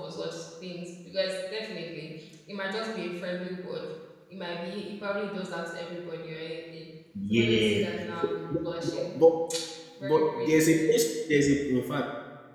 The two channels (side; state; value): both; identical; correlation 1.00